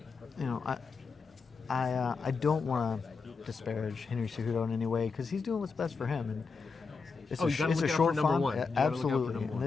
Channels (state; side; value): quieter; right; 4.8 dB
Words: I don't want to disparage Henry Cejudo in any way because he's doing what's best for him, and it's you gotta it's look a out short for number fight. one. You gotta look out for Absolutely, number and one.